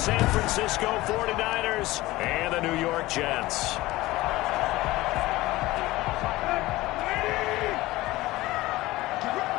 Francisco 49ers and the New York Jets.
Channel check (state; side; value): quieter; right; 18.6 dB